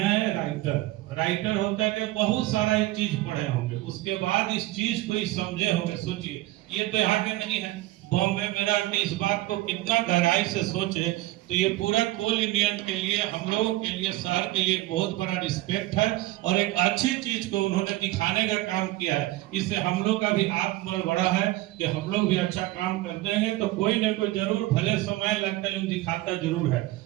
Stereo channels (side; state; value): left; quieter; 17.6 dB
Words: राइटर होता है कि बहुत सारा ये चीज पढ़े होंगे, उसके बाद इस चीज को ही समझे होंगे। सोचिए ये तो यहाँ के नहीं है, बॉम्बे में रह के इस बात को कितना गहराई से सोचे, तो ये पूरा कोल इंडियन के लिए, हम लोगों के लिए, शहर के लिए बहुत बड़ा रिस्पेक्ट है और एक अच्छी चीज को उन्होंने दिखाने का काम किया है। इससे हम लोग का भी आत्मबल बढ़ा है कि हम लोग भी अच्छा काम कर देंगे तो कोई न कोई जरूर, भले समय लगता है लेकिन दिखाता जरूर है।